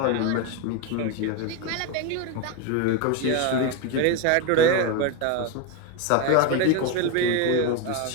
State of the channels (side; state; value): both; different; correlation 0.03